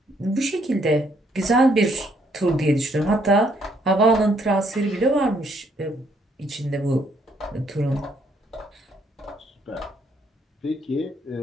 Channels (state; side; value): normal; both; correlation 0.69